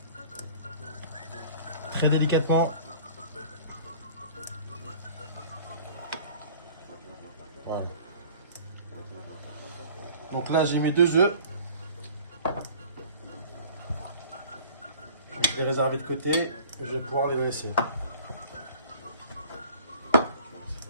Très délicatement. Voilà. Donc là, j'ai mis 2 œufs. Je vais les réserver de côté. Je vais pouvoir les laisser.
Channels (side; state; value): both; inverted; correlation -0.47